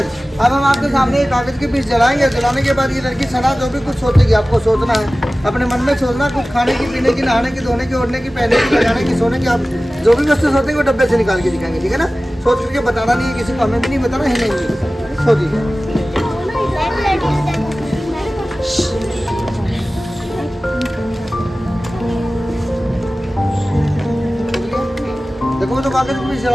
अब हम आपके सामने कागज के पीस जलाएंगे। जलाने के बाद ये लड़की सना जो भी कुछ सोचेगी, आपको सोचना है, अपने मन में सोचना, कुछ खाने की, पीने की, नहाने की, धोने की, ओढ़ने की, पहनने की, लगाने की, सोने की, आप जो भी वस्तु सोचेंगे वो डब्बे से निकाल के दिखाएंगे, ठीक है ना? सोच करके बताना नहीं है किसी को, हमें भी नहीं बताना, है नहीं सोचिए। देखो तो कागज भी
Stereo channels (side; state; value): both; normal; correlation 0.97